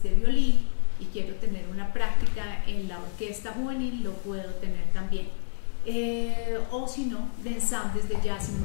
de violín y quiero tener una práctica en la orquesta juvenil, lo puedo tener también. O si no, de ensambles de jazz y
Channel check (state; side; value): silent; right; digital silence